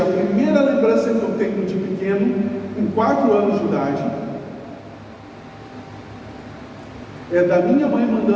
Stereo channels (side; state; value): both; identical; correlation 1.00